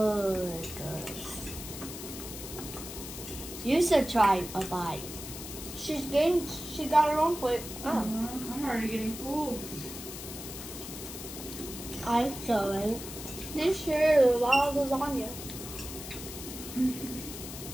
You should try a bite. She got her own plate. Oh. I'm already getting full. I saw it. This year, there's a lot of lasagna.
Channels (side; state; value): left; noise; hiss, 10 dB below the sound